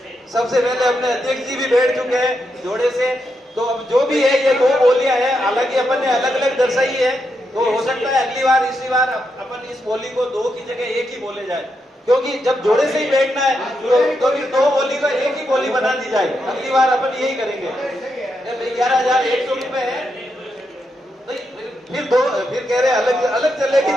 सबसे पहले अपने अध्यक्ष जी भी बैठ चुके हैं जोड़े से, तो अब जो भी है ये दो बोलियां हैं, हालांकि अपन ने अलग अलग दर्शाई है, तो हो सकता है अगली बार इसी बार अपन इस बोली को दो की जगह एक ही बोले जाए, क्योंकि जब जोड़े से ही बैठना है तो फिर दो बोली का एक ही बोली बना दी जाए। अगली बार अपन यही करेंगे। 11,100 रुपए है, फिर कह रहे अलग अलग चलेगी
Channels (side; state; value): both; normal; correlation 0.83